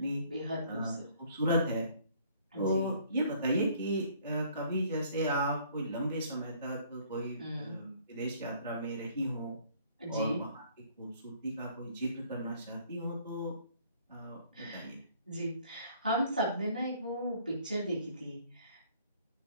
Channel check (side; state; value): both; inverted; correlation -0.59